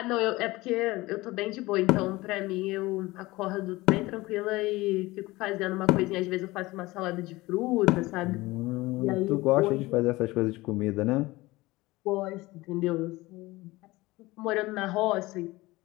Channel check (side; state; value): right; quieter; 20.3 dB